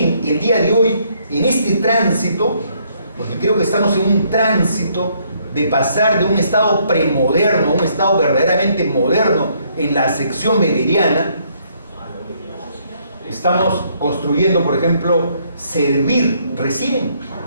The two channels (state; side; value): inverted; both; correlation -0.69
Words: el día de hoy, en este tránsito, porque creo que estamos en un tránsito de pasar de un Estado premoderno a un Estado verdaderamente moderno en la sección weberiana, estamos construyendo, por ejemplo, servir recién,